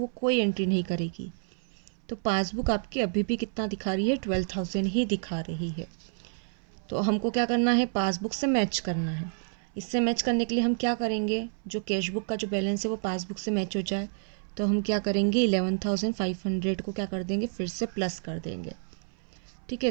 कोई एंट्री नहीं करेगी। तो पासबुक आपकी अभी भी कितना दिखा रही है? 12,000 ही दिखा रही है। तो हमको क्या करना है? पासबुक से मैच करना है। इससे मैच करने के लिए हम क्या करेंगे? जो कैश बुक का जो बैलेंस है वो पासबुक से मैच हो जाए, तो हम क्या करेंगे? 11,500 को क्या कर देंगे? फिर से प्लस कर देंगे। ठीक है,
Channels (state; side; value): silent; left; 58 dB below the other